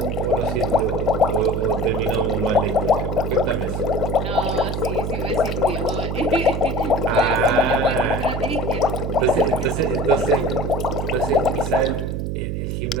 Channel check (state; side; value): noise; right; hum, 2 dB below the sound